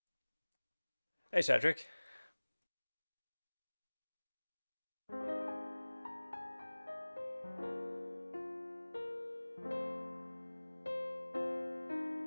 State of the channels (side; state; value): both; inverted; correlation -1.00